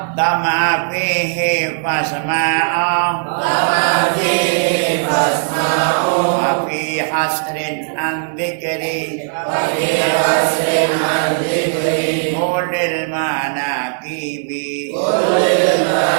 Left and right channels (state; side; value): silent; left; digital silence